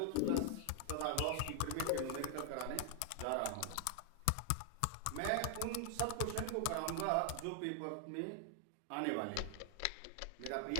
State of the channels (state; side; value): different; both; correlation 0.00